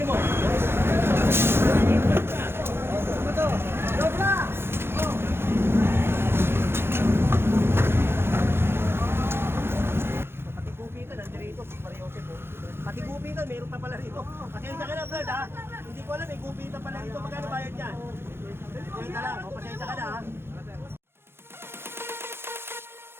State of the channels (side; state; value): left; late; 0.11 ms